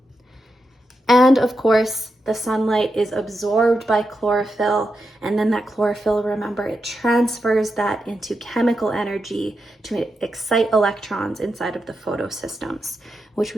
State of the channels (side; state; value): both; normal; correlation 0.87